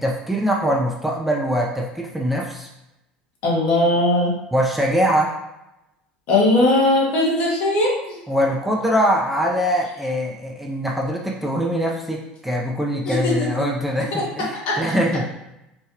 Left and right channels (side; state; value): both; normal; correlation 0.47